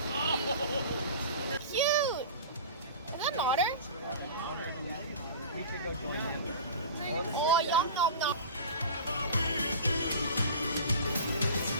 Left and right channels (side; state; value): both; inverted; correlation -0.36